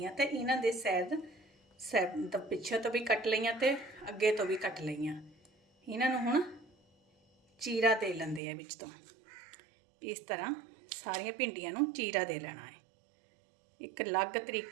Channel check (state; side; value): drops out; left; at 8.4 s